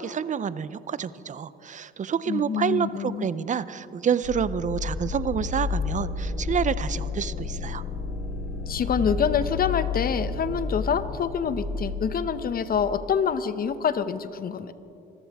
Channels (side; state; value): both; normal; correlation 0.34